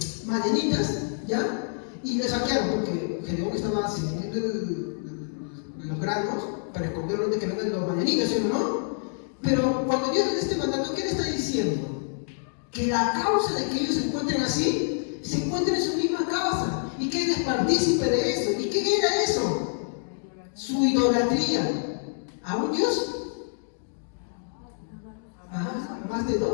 madianitas, ¿ya? Y le saquearon, porque Gedeón estaba sirviendo los granos para esconderlos de que vengan los madianitas, ¿sí o no? Pero cuando Dios le da este mandato, ¿qué le está diciendo? Que la causa de que ellos se encuentren así, se encuentren en su misma causa, y que él es partícipe de eso. ¿Y qué era eso? Su idolatría. ¿A un Dios? Más de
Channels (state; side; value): silent; right; digital silence